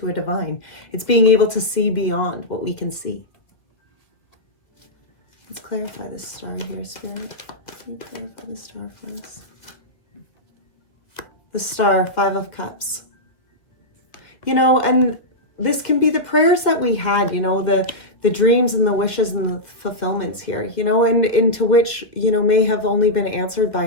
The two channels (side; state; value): right; late; 1.9 ms